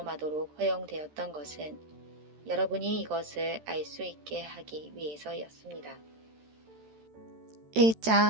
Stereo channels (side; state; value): left; late; 13 ms